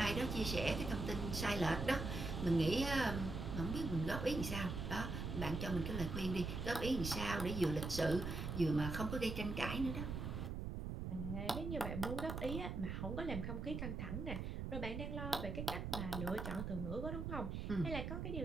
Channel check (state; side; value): noise; right; rumble, 4 dB below the sound